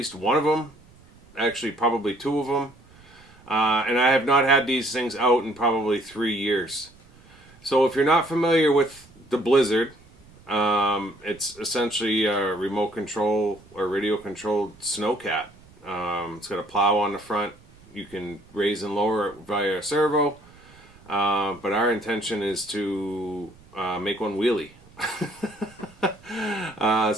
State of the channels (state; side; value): noise; right; rumble, 26 dB below the sound